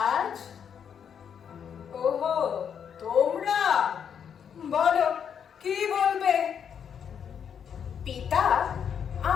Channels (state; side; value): quieter; right; 7.8 dB